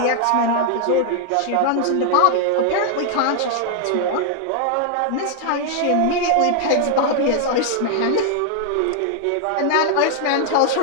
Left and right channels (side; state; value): both; different; correlation 0.00